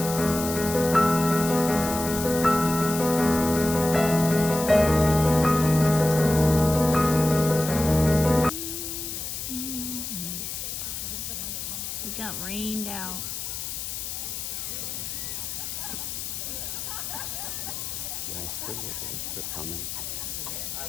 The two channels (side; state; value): left; noise; hiss, 5 dB below the sound